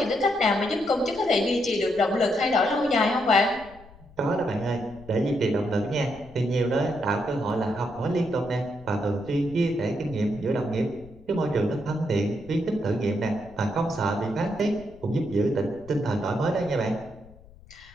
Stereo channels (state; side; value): noise; left; rumble, 22 dB below the sound